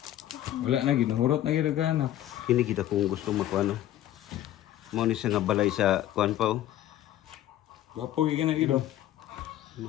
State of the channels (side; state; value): right; quieter; 13.0 dB